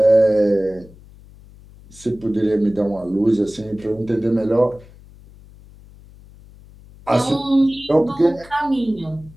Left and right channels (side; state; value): left; noise; hum, 23 dB below the sound